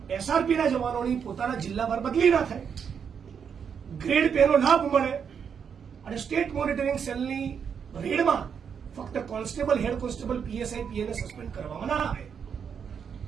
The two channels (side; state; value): left; quieter; 7.1 dB